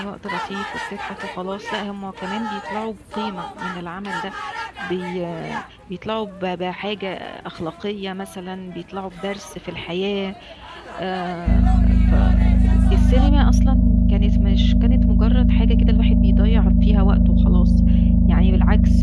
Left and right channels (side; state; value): both; identical; correlation 1.00